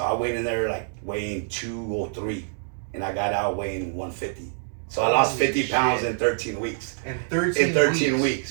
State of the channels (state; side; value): silent; left; digital silence